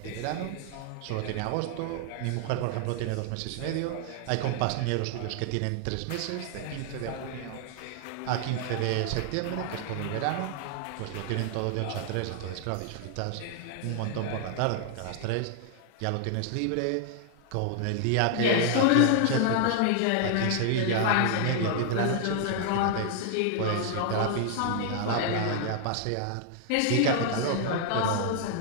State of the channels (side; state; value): both; different; correlation 0.00